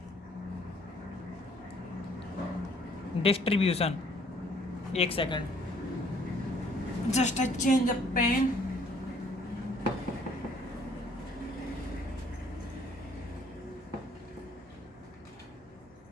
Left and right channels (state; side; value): normal; both; correlation 0.61